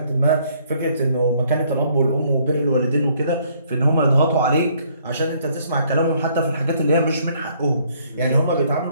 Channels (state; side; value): inverted; both; correlation -0.65